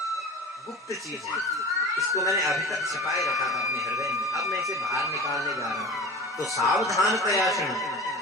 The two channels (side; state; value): both; normal; correlation 0.35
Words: गुप्त चीज है, इसको मैंने अभी तक छिपाए रखा था अपने हृदय में, अब मैं इसे बाहर निकालने जा रहा हूं। तो सावधान प्रयासन,